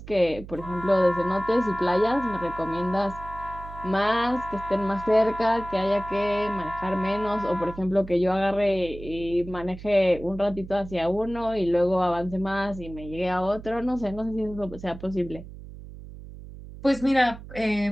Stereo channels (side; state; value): right; noise; hum, 14 dB below the sound